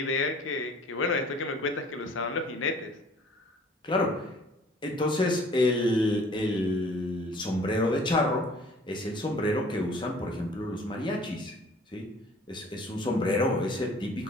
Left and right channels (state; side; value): normal; both; correlation 0.53